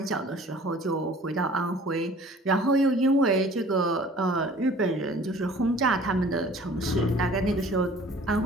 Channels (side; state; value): both; normal; correlation 0.49